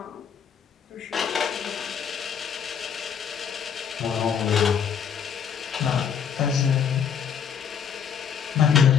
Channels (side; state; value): right; quieter; 7.6 dB